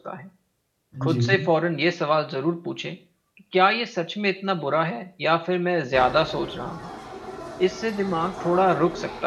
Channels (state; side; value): identical; both; correlation 1.00